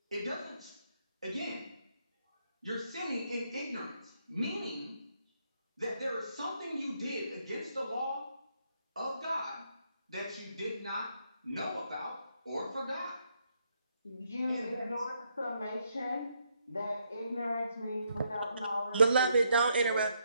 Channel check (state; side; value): inverted; both; correlation -0.75